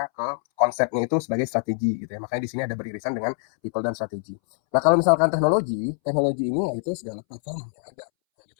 ke konsepnya itu sebagai strategi gitu ya. Makanya di sini ada beririsan dengan people dan strategi. Nah, kalau misalkan teknologi, teknologi ini yaitu segala platform yang ada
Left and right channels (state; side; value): silent; right; 62 dB below the other